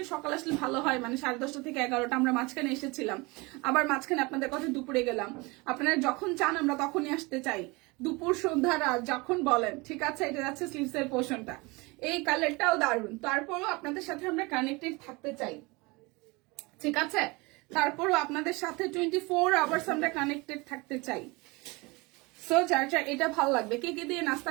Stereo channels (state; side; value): quieter; left; 25.5 dB